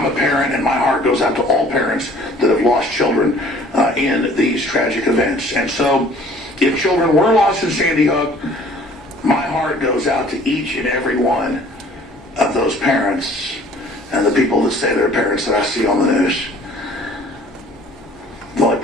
a parent, and my heart goes out to all parents that have lost children in these tragic events. And so, if children were lost in Sandy Hook, my heart goes out to each and every one of those parents and the people that say they're parents that I see on the news. The only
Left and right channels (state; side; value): normal; both; correlation 0.54